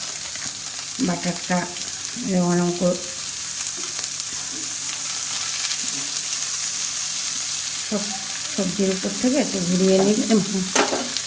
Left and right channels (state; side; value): identical; both; correlation 1.00